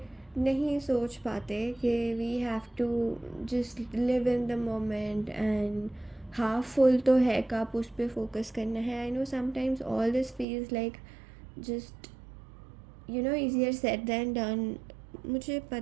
नहीं सोच पाते कि we have to just live in the moment and half full तो है कप, उस पर फोकस करना है। I know sometimes all this feels like just easier said than done. मुझे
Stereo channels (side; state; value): left; drops out; at 10.5 s